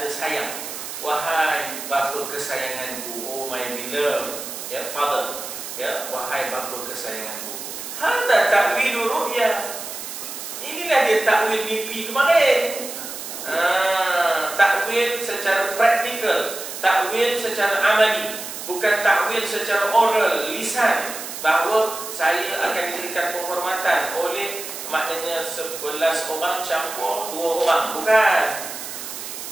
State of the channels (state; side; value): noise; right; hiss, 9 dB below the sound